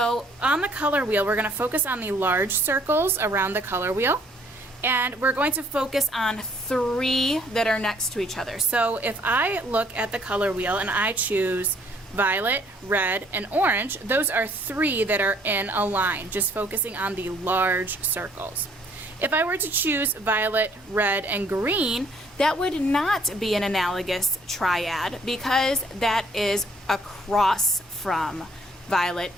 on the color wheel, we're going to focus on the large circles around the color wheel, and we're going to focus on three that are next to each other. So if I look at the color wheel and I choose violet, red, and orange, those are three that are in a line, just focusing on the large circles. If I were to choose violet, red, and green, that would not be an analogous triad because that is across from violet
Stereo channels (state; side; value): normal; both; correlation 0.62